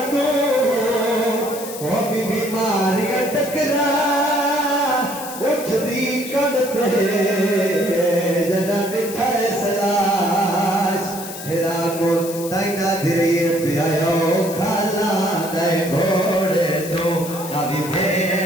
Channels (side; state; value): left; noise; hiss, 11 dB below the sound